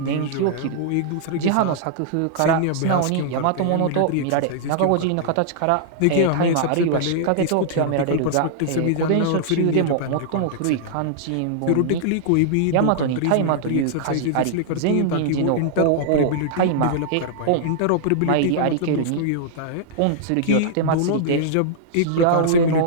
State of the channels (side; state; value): both; different; correlation -0.01